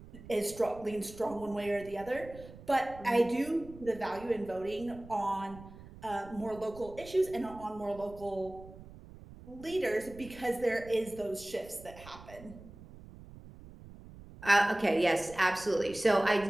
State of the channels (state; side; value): noise; right; rumble, 17 dB below the sound